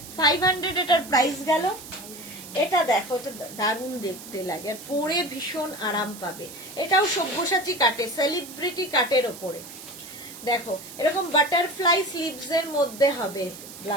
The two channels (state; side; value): noise; right; hiss, 14 dB below the sound